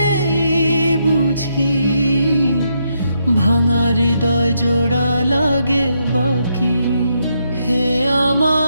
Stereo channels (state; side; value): inverted; both; correlation -0.78